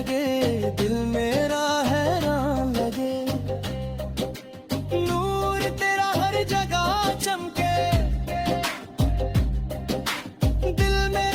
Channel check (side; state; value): both; identical; correlation 1.00